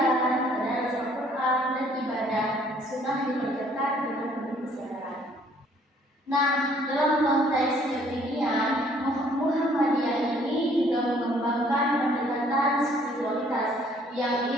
tadarus Al-Quran, dan ibadah sunnah dikerjakan dengan penuh kesadaran. Nah, dalam konteks kekinian, Muhammadiyah ini juga mengembangkan pendekatan spiritualitas yang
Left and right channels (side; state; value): both; normal; correlation 0.61